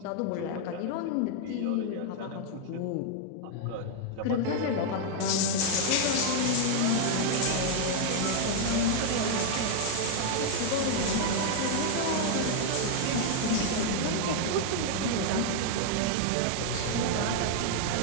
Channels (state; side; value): different; both; correlation 0.00